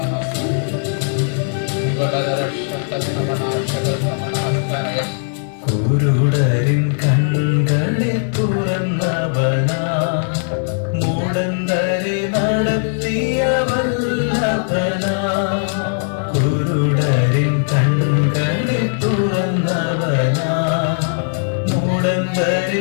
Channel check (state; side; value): silent; right; 63 dB below the other